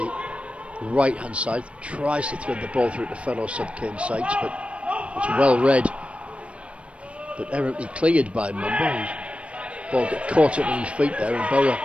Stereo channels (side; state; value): left; late; 0.061 ms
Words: right hand side, tries to thread the ball through to fellow sub Kane Sykes, but it's well read, but errantly cleared by Mumba. His ball got caught up on his feet there, and Boro